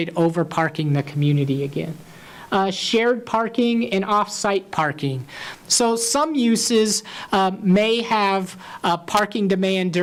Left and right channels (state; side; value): identical; both; correlation 1.00